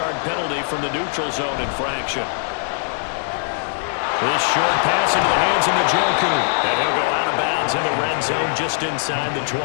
penalty from the neutral zone infraction. This short pass into the hands of Njoku. And he'll go out of bounds in the red zone just inside the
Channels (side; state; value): right; silent; digital silence